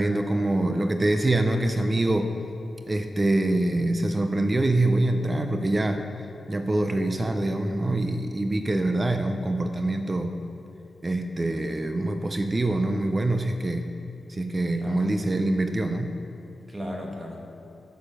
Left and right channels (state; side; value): normal; both; correlation 0.94